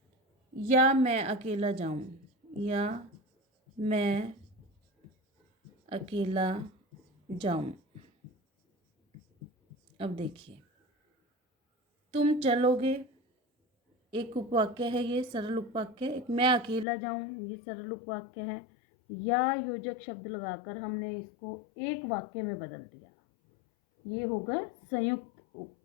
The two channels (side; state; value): right; drops out; at 16.9 s